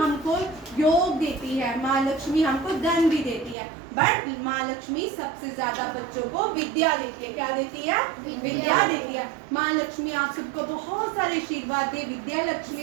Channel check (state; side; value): drops out; left; at 3.6 s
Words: योग देती है, माँ लक्ष्मी हमको धन भी देती है, बट माँ लक्ष्मी सबसे ज्यादा बच्चों को विद्या देती है। क्या देती है? विद्या देती है। माँ लक्ष्मी आप सबको बहुत सारे आशीर्वाद दे विद्या